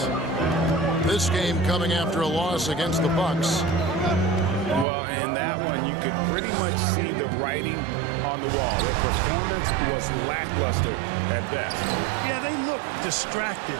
This game coming after a loss against the Bucks. Well, in that one, you could pretty much see the writing on the wall. Their performance was lackluster at best. Yeah, they looked distracted,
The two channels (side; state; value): left; drops out; at 4.9 s